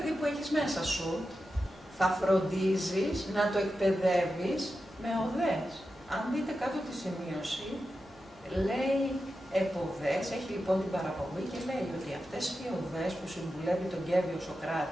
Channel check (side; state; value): both; normal; correlation 0.90